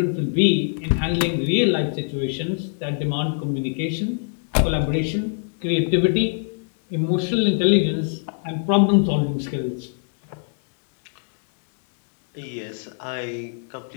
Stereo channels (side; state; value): right; silent; digital silence